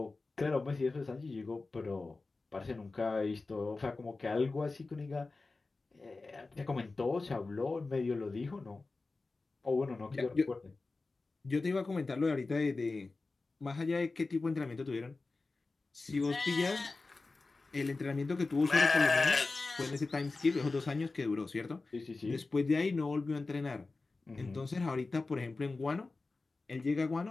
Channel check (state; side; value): quieter; right; 3.6 dB